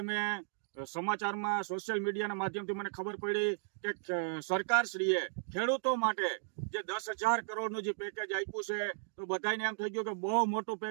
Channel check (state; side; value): silent; left; digital silence